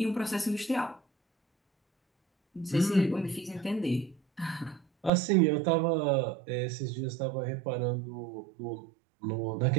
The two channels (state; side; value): drops out; left; at 5.1 s